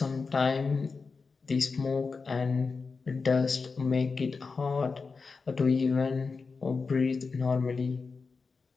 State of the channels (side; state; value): right; quieter; 4.6 dB